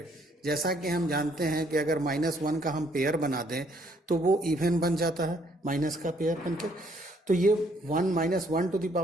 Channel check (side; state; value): both; normal; correlation 0.67